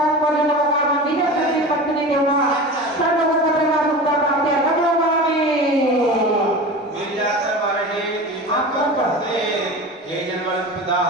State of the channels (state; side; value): normal; both; correlation 0.31